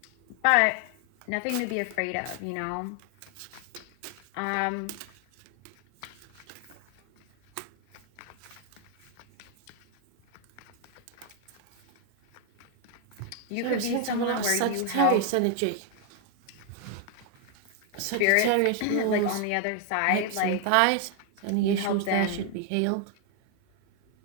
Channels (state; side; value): different; both; correlation 0.00